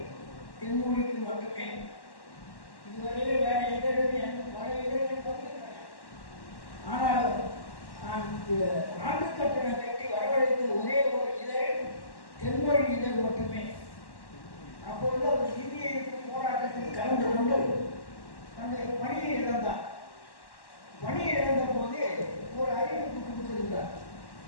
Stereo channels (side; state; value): right; late; 1.1 ms